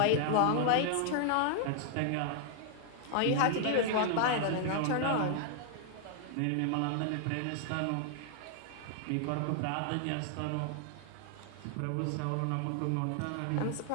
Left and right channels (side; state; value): both; different; correlation 0.00